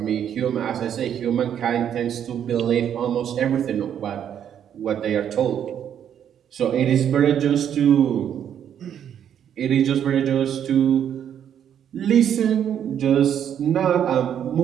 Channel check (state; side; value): quieter; left; 9.3 dB